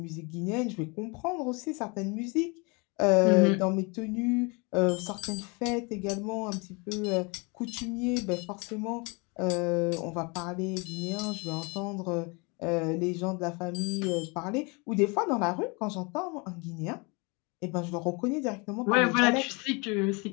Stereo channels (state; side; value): quieter; right; 29.8 dB